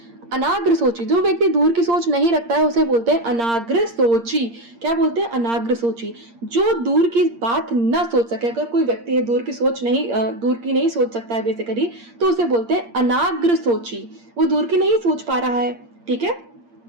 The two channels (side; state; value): left; late; 8.6 ms